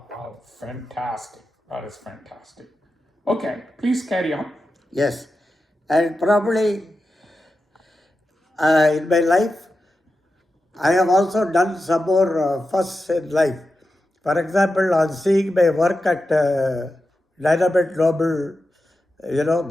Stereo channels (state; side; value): normal; both; correlation 0.91